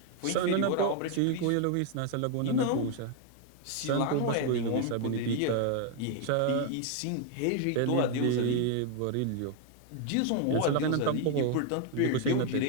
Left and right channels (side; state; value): both; different; correlation 0.00